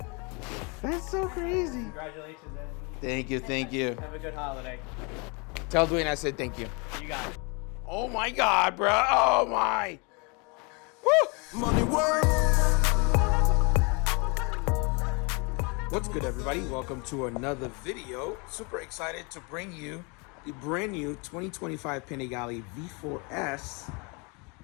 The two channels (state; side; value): quieter; right; 31.4 dB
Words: That's so crazy. Congratulations, Eddie. Thank you, thank you. Have a good holiday. Tell Dwayne I said thank you. You got it. Oh my god, bro. Oh my. Woo! Money work. What's good, everybody? Welcome to another video. Super excited to bring you the brand new 2025 Panigale V4S.